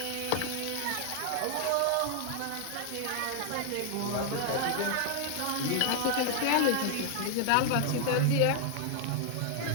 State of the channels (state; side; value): different; both; correlation 0.00